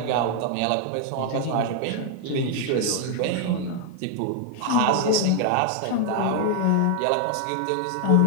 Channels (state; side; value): different; both; correlation 0.00